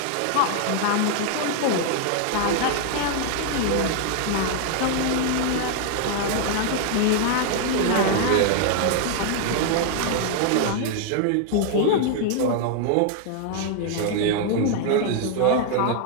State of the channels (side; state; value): both; different; correlation 0.00